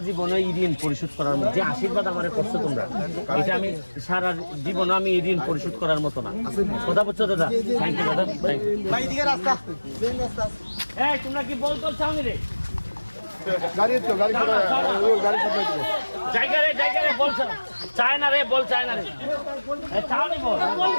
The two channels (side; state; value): both; inverted; correlation -1.00